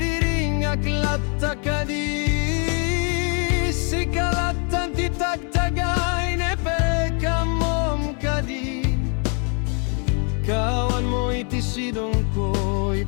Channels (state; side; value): quieter; right; 38.0 dB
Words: aklatta kadi. Sikalatan titagtagay ne pekamom kadi. Kawan mo iti sidong ko,